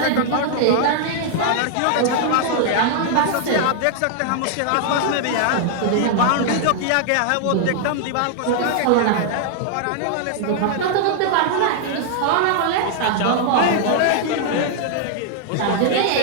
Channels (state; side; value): different; both; correlation 0.00